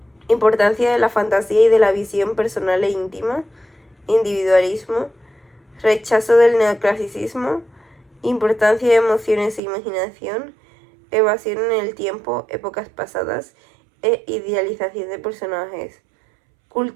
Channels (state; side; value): drops out; left; at 9.6 s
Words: importancia de la fantasía y de la visión personal e íntima, individualismo, rechazo del neoclasicismo, importancia de emociones e imaginación, evasión en el tiempo, épocas pasadas e idealización de personajes,